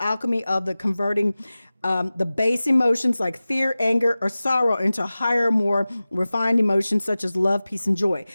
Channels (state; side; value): inverted; both; correlation -0.97